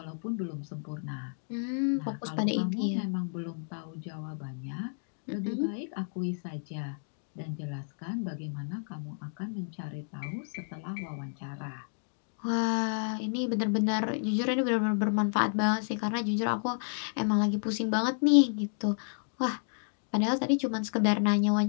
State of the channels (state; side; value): silent; right; digital silence